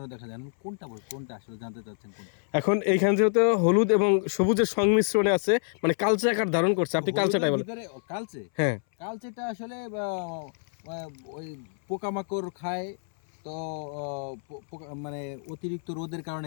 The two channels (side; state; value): right; silent; 60 dB below the other